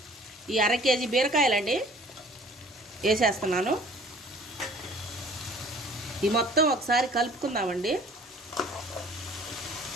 ఈ 1/2 కేజీ బీరకాయలండి వేసేస్తున్నాను. ఈ మొత్తం ఒకసారి కలుపుకుందామండి.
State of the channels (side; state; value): both; normal; correlation 0.51